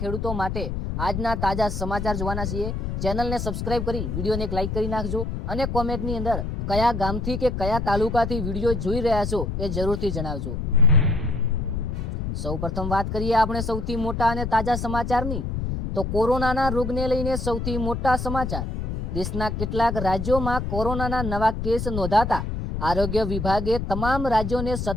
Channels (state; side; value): noise; left; rumble, 3 dB below the sound